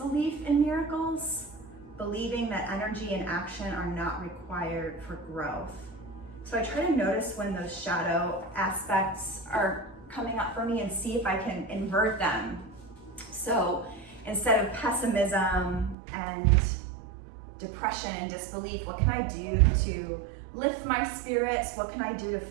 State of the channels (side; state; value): left; drops out; at 16.0 s